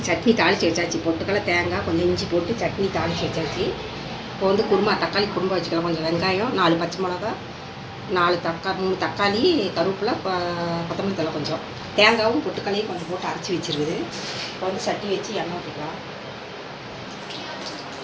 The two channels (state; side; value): identical; both; correlation 1.00